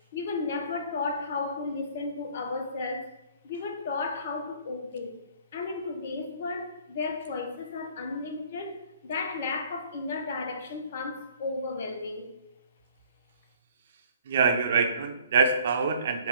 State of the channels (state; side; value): inverted; both; correlation -0.55